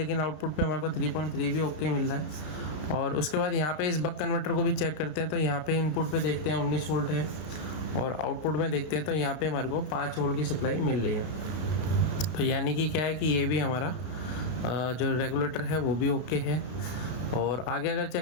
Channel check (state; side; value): late; right; 33 ms